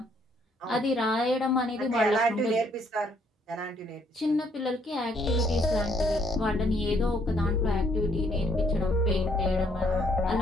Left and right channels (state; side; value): normal; both; correlation 0.67